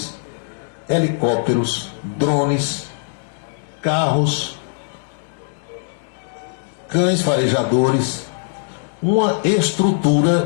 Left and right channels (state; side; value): silent; right; digital silence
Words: helicópteros, drones, carros, cães farejadores, uma